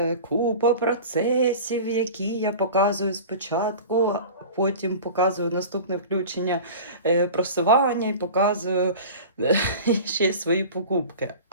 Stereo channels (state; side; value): inverted; both; correlation -0.36